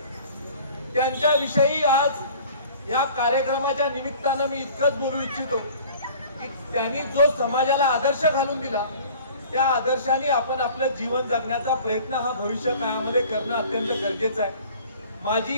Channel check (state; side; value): inverted; both; correlation -0.47